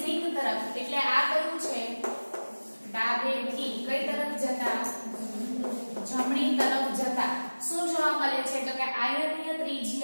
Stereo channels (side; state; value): both; inverted; correlation -1.00